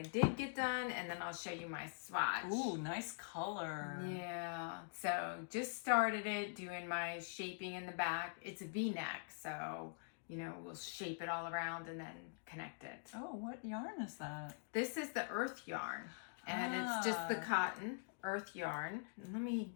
did get done, and then I'll show you my swatch. Ooh, nice color. Yeah. So just started it, doing my shaping in the back. It's a V-neck, so, you know, we'll shape it all around and then connect it. Oh, what yarn is that? This is the earth yarn, and it's just the cotton earth yarn. And let me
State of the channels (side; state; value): right; silent; digital silence